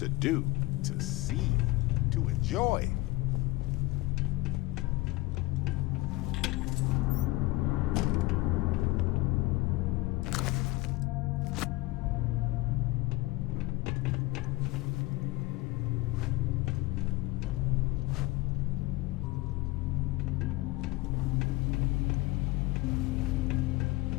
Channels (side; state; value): right; quieter; 20.7 dB